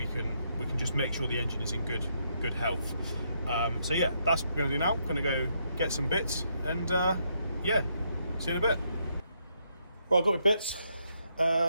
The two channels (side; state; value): both; inverted; correlation -0.76